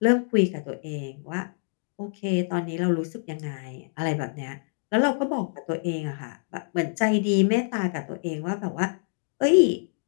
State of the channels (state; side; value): silent; right; digital silence